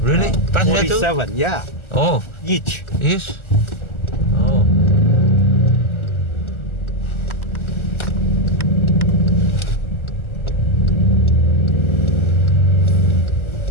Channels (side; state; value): right; late; 1.3 ms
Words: Passenger too? 47, yeah. Oh, Each. yes. Oh.